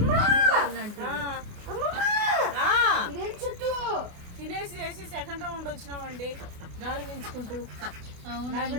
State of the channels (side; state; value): left; late; 28 ms